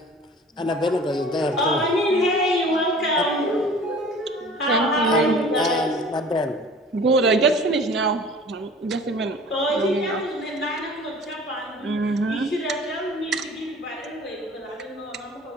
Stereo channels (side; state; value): both; normal; correlation 0.45